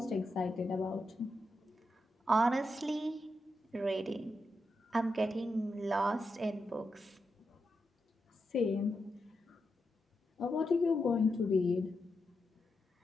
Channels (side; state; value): both; normal; correlation 0.86